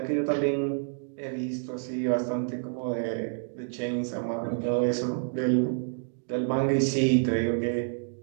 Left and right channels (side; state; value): left; silent; digital silence